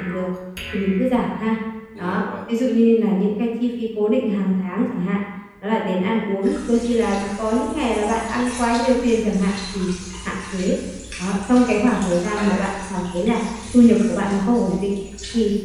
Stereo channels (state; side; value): identical; both; correlation 1.00